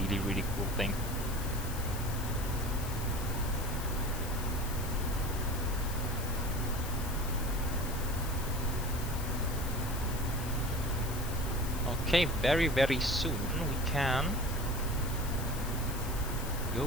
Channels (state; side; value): noise; left; hiss, 10 dB below the sound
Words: really cool thing. Okay, very, very soon we can